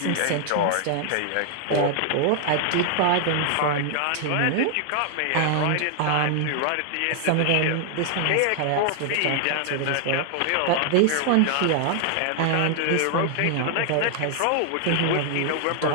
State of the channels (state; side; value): different; both; correlation 0.00